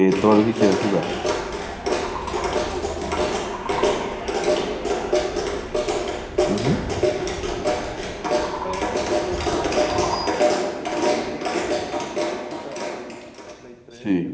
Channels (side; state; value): both; identical; correlation 1.00